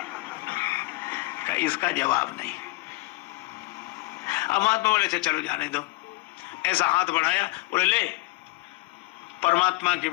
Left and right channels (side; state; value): right; quieter; 21.6 dB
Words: इसका जवाब नहीं। अब महात्मा बोले चलो जाने दो। ऐसा हाथ बढ़ाया, बोले ले परमात्मा के,